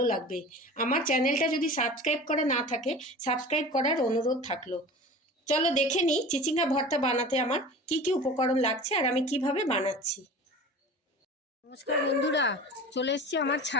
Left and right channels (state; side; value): normal; both; correlation 0.37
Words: লাগবে। আমার চ্যানেলটা যদি সাবস্ক্রাইব করা না থাকে, সাবস্ক্রাইব করার অনুরোধ থাকলো। চলো দেখে নিই চিচিঙ্গা ভর্তা বানাতে আমার কি কি উপকরণ লাগছে আর আমি কিভাবে বানাচ্ছি। নমস্কার বন্ধুরা, চলে এসেছি আমার